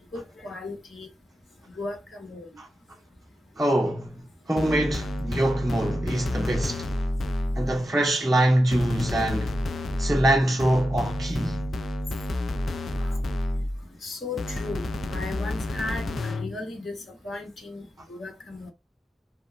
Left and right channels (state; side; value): normal; both; correlation 0.89